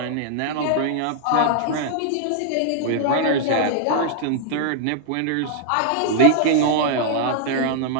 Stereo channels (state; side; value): different; both; correlation -0.01